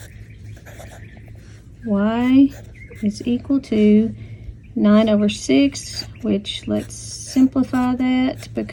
Y is equal to 9 over 6, which let's simplify that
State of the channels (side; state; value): both; identical; correlation 1.00